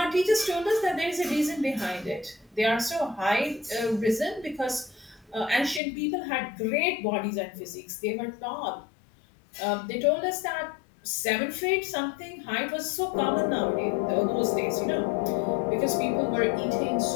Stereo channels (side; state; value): right; drops out; at 5.8 s